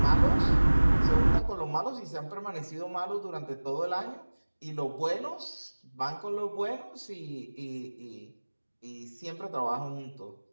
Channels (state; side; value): inverted; both; correlation -1.00